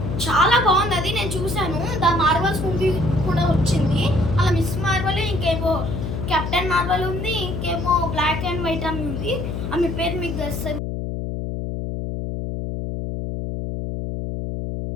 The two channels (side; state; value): left; noise; hum, 4 dB below the sound